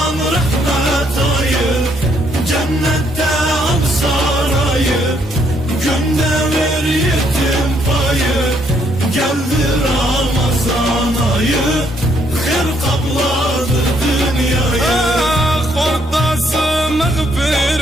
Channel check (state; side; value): normal; both; correlation 0.71